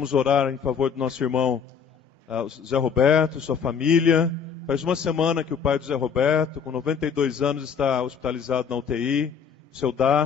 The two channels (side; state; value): right; quieter; 6.6 dB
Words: orar em favor do nosso irmão Zé Roberto, sua família. Faz uma semana que o pai do Zé Roberto, com 92 anos, está hospitalizado na UTI, seu